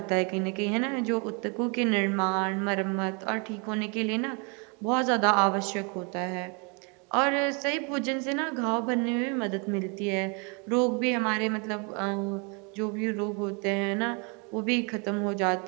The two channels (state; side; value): quieter; left; 34.3 dB